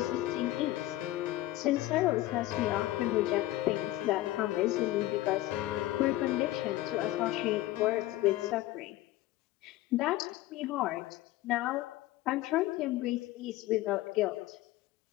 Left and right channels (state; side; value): quieter; right; 16.2 dB